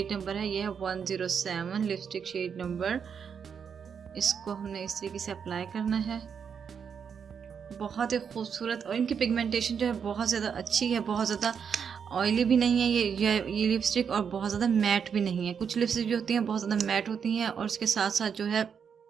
नंबर है ये है 107 लिपस्टिक शेड नंबर। इसको हमने इस तरीके से अप्लाई करना है। बहुत ही खूबसूरत और इनकी पिगमेंटेशन जो है बहुत ज़्यादा अच्छी है, बहुत ज़्यादा ऑयली भी नहीं है ये लिपस्टिक और बहुत ज़्यादा मैट भी नहीं है। कुछ लिपस्टिक जो होती हैं बहुत ज़्यादा मैट होती हैं और उसके साथ साथ जो है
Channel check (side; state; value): left; quieter; 7.0 dB